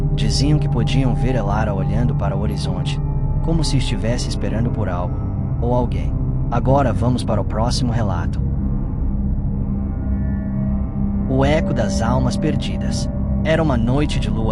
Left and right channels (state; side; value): identical; both; correlation 1.00